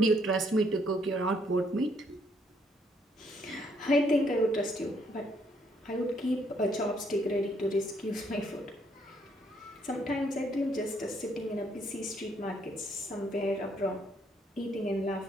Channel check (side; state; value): both; normal; correlation 0.70